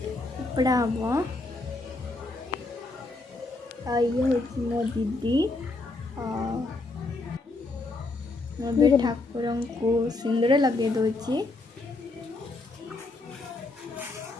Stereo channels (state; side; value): quieter; right; 3.2 dB